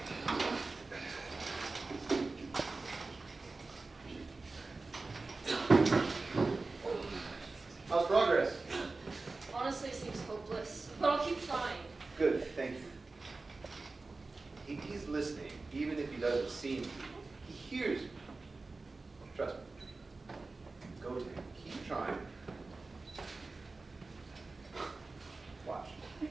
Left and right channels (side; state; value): left; quieter; 3.6 dB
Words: How's progress? Honestly, it seems hopeless, but I'll keep trying. Good, thank you. He's listening, even if he doesn't see me. He hears me. Trust me. Go to him. Keep trying. Watch.